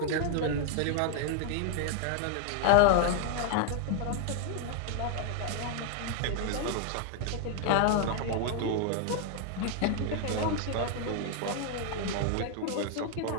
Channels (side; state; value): both; different; correlation 0.00